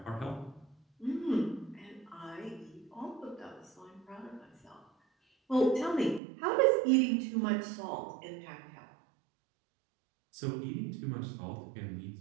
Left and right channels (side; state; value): left; drops out; at 6.2 s